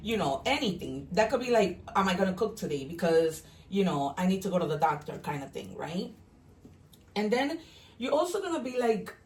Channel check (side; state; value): both; identical; correlation 1.00